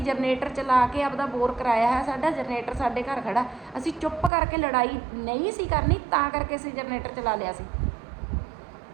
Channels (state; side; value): drops out; left; at 4.3 s